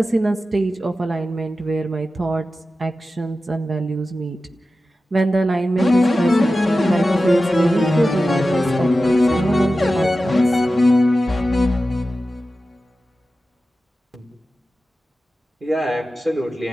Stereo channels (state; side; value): normal; both; correlation 0.93